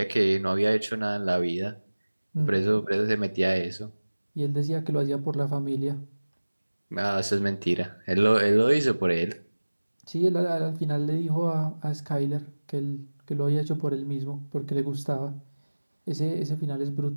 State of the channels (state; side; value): inverted; both; correlation -1.00